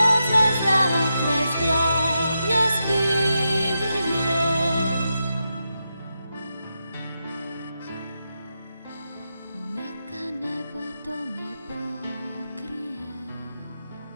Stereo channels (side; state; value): both; inverted; correlation -0.87